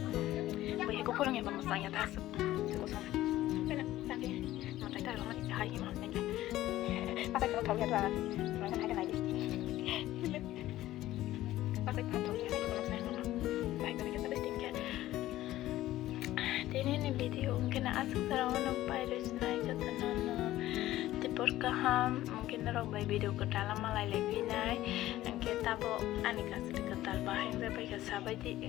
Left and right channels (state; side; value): quieter; right; 15.0 dB